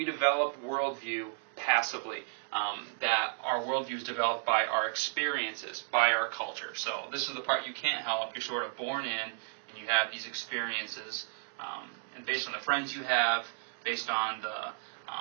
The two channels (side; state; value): left; silent; 56 dB below the other